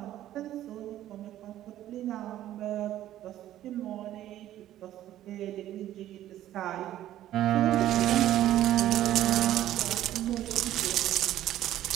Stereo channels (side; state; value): left; quieter; 12.9 dB